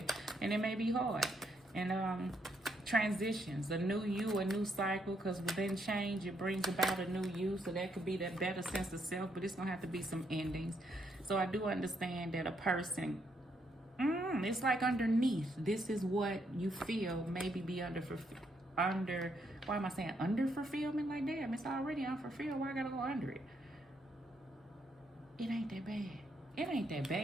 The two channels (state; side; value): normal; both; correlation 0.75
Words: and it may be hard. And transitions, a new you, a new cycle, because within change, it brings about a new you. So, that could be that better sense of self, but it's going to have to be some endings. So, I do understand that a person... it's like underneath. This is what you feel maybe be under, why am I saying under fulfillment? Like, damn, it's already unfulfilled. Why I gotta go under it? It ain't that bad. It ain't that